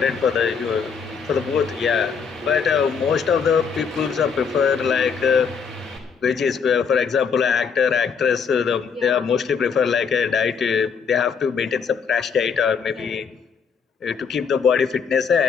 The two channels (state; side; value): quieter; right; 6.2 dB